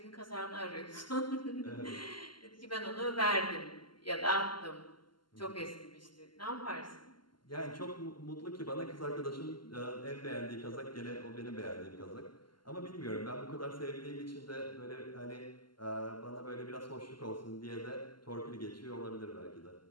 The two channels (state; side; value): late; right; 0.72 ms